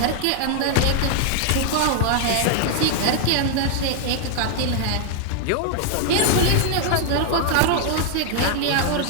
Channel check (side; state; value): both; different; correlation 0.00